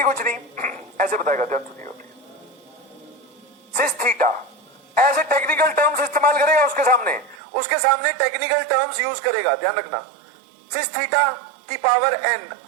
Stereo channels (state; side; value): drops out; left; at 7.4 s